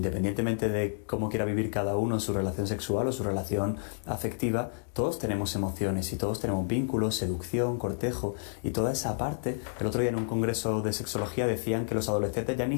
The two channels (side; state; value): right; silent; digital silence